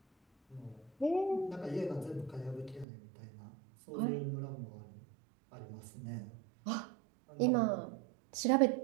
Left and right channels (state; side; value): drops out; left; at 2.9 s